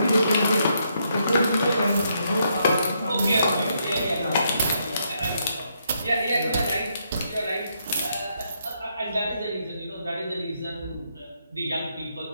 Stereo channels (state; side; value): inverted; both; correlation -0.76